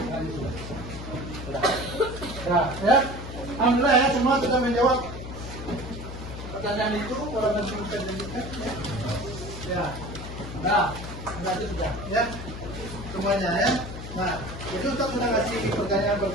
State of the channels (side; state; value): left; noise; hum, 10 dB below the sound